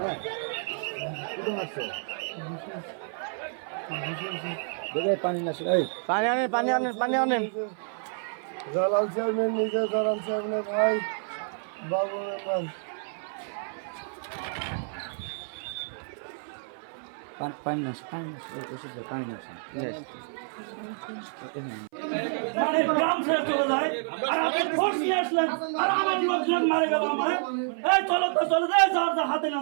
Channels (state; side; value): silent; left; 56 dB below the other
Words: কোথায় মারছে দেখে পানি না এই পানি আনেন জালাল চেয়ারম্যান নিজে জালাল চেয়ারম্যানের ভাই বাবু মেম্বার পানি না ওষুধ পানি না মানে গ্রাম ছেড়ে চলে যায় আর আপনি ফোর্স নিয়ে আসলেন আর আমার লোকজন মারে গেল আমার এই চলো তো চলে যায় যার যা হাতে